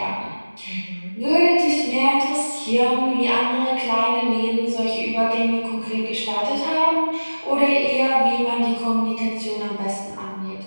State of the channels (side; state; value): both; inverted; correlation -1.00